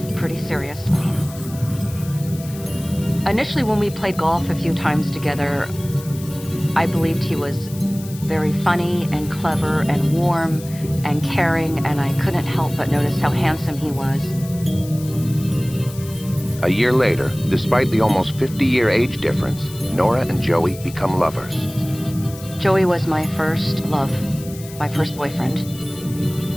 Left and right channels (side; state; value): left; noise; hiss, 17 dB below the sound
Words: pretty seriously. Initially, when we played golf a few times together, I believed he was very funny and clever and warm and caring, and I couldn't help but notice how handsome he was. A year later, despite the almost 50-year age difference, Nora and Joey become lovers. Joey was my first love, my first boyfriend.